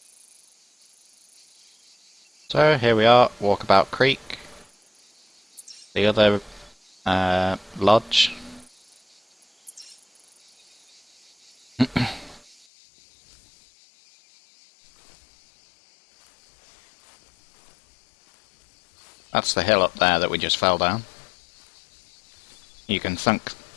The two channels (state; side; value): drops out; right; at 12.6 s